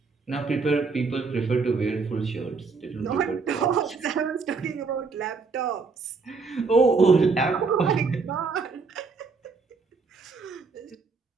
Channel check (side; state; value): left; quieter; 4.6 dB